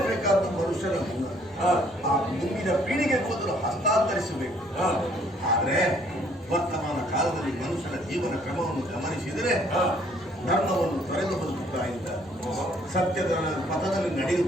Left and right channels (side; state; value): left; noise; rumble, 29 dB below the sound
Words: ಮನುಷ್ಯನ ಗುಣ. ಆ ಮುಂದಿನ ಪೀಳಿಗೆ ಮೊದಲು ಹಸ್ತಾಂತರಿಸಬೇಕು. ಆದ್ರೆ ವರ್ತಮಾನ ಕಾಲದಲ್ಲಿ ಮನುಷ್ಯನ ಜೀವನ ಕ್ರಮವನ್ನು ಗಮನಿಸಿದರೆ ಧರ್ಮವನ್ನು ತೊರೆದು ಬದುಕುತ್ತಾ ಇದ್ದ, ಸತ್ಯದ ಪಥದಲ್ಲಿ